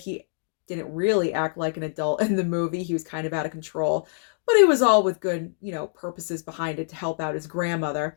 didn't really act like an adult in the movie. He was kind of out of control. But it was all with good, you know, purposes behind it to help out his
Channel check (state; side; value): silent; right; digital silence